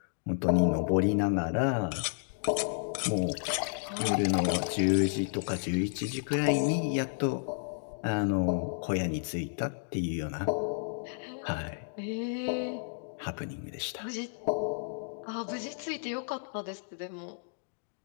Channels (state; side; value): silent; right; digital silence